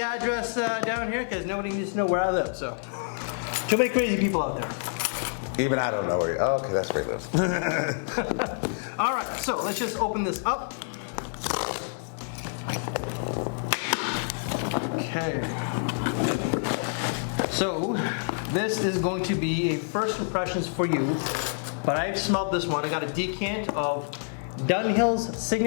down here because nobody needs to know where I live, so. Too many crazy people out there. Even I don't know where you are. Okay, that's where he lives. All right, so let's just open this up. Okay. So this is going to be a first impressions for you, but I've smelled this one. I got a decant of Dunhill's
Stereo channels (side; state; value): right; silent; 60 dB below the other